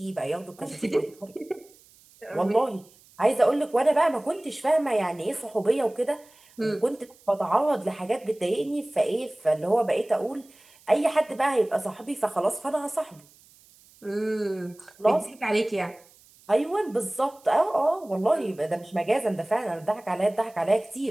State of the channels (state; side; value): noise; right; hiss, 27 dB below the sound